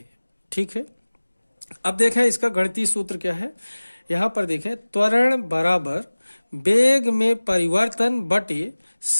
ठीक है, अब देखें इसका गणितीय सूत्र क्या है। यहां पर देखें, त्वरण बराबर वेग में परिवर्तन बटे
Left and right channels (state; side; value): inverted; both; correlation -1.00